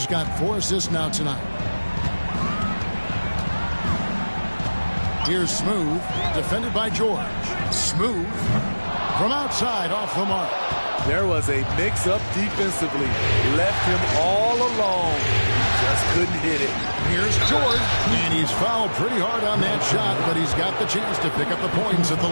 got 4 assists now tonight. Here's Smooth, defended by George. Smooth from outside off the mark. There was a mix-up defensively. Left him all alone. He just couldn't hit it. Here's George, and he's fouled pretty hard on that shot, but he's got the chance to pick up the points at the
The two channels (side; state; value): both; inverted; correlation -1.00